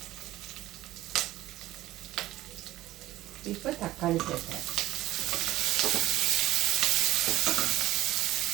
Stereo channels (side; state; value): left; quieter; 15.8 dB